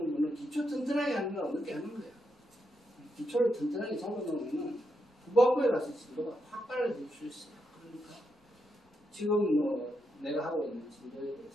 분은 기초 튼튼하게 하는 거라고 늦게 하는 거예요. 기초를 튼튼하게 잡아놓으면 후반부에 가서 진도가 확 빨라질 수 있어요. 그러니까 지금 뭐 내가 하고 있는 진도에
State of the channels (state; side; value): normal; both; correlation 0.83